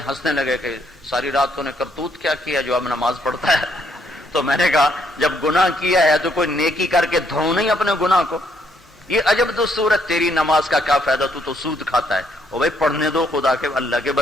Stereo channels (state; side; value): normal; both; correlation 0.71